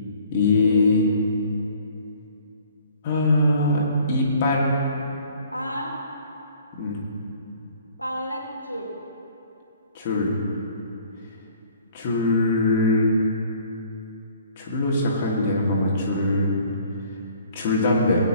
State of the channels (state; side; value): inverted; both; correlation -0.56